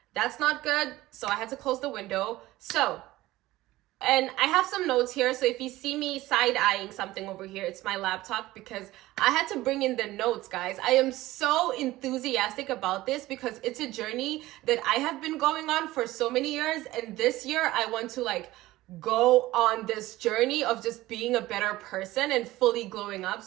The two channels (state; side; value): quieter; left; 17.3 dB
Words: that's not good. So I had to close the window. And I have some notes here. So if you see me side-eyeing something over here, it's my laptop because I had to bring in the notes, guys. I am so enthusiastic about this because it's a journey that I have been going on for so many years. And this year I want to go on this journey of just being a better person and fully glowing up.